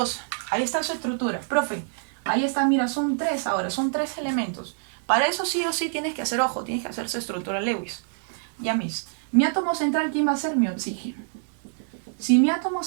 Ahí está su estructura. Profe, ahí está, mira, son 3 ahora, son 3 elementos. Para eso sí o sí tienes que hacer, ojo, tienes que hacer su estructura Lewis. Ya mis. Mi átomo central, ¿quién va a ser? Mi oxígeno. Si mi átomo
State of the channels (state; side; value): silent; left; digital silence